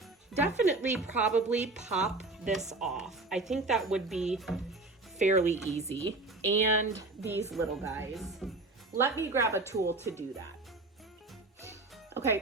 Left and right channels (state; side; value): quieter; left; 3.2 dB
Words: definitely probably pop this off. I think that would be fairly easy. And these little guys. Let me grab a tool to do that.